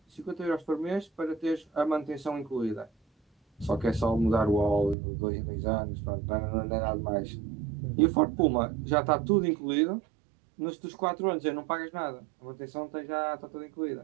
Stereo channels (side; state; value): left; drops out; at 5.0 s